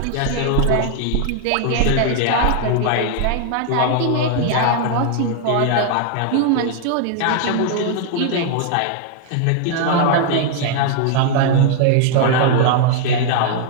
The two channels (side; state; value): both; different; correlation 0.00